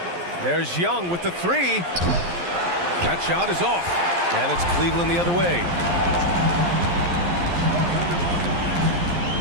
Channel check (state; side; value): late; left; 11 ms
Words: There's Young with the three. That shot is off, and it's Cleveland the other way.